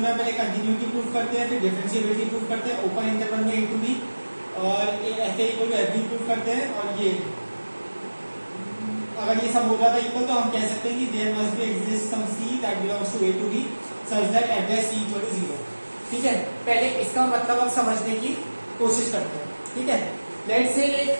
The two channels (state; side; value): inverted; both; correlation -1.00